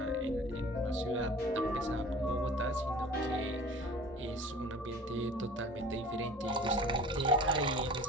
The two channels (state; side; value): normal; both; correlation 0.43